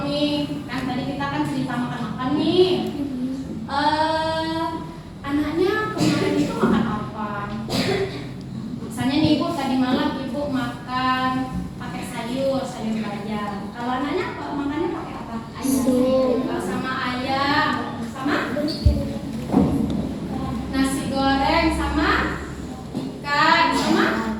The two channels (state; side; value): identical; both; correlation 1.00